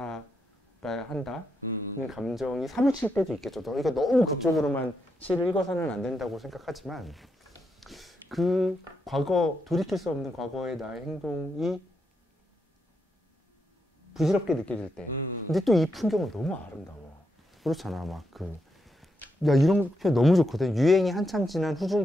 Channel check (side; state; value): both; normal; correlation 0.82